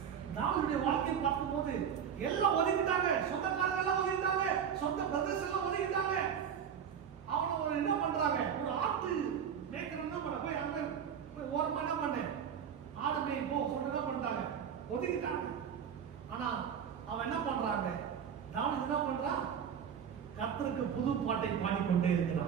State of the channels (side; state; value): left; quieter; 8.0 dB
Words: தாவீதுடைய வாழ்க்கையை பார்க்கும்போது எல்லாம் ஒதுக்கிட்டாங்க, சொந்தக்காரங்க எல்லாம் ஒதுக்கிட்டாங்க, சொந்த பிரதர்ஸ் எல்லாம் ஒதுக்கிட்டாங்க. அவனை ஒரு என்ன பண்றாங்க, ஒரு ஆட்டு மேய்க்கிறவன் பண்ண போய் அங்க போய் ஓரமா என்ன பண்ண ஆடு மேய் போ சொல்லிட்டு என்ன பண்ணிட்டாங்க, ஒதுக்கிட்டாங்க. ஆனா அவன் என்ன பண்றாங்க, தாவீது என்ன பண்றான், கர்த்தருக்கு புது பாட்டை பாடிக்கொண்டே